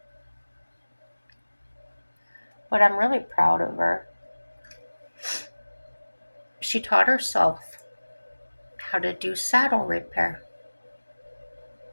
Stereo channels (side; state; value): both; inverted; correlation -1.00